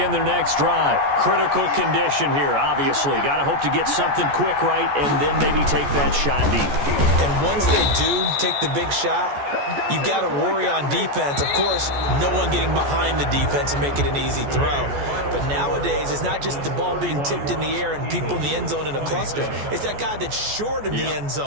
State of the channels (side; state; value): left; late; 14 ms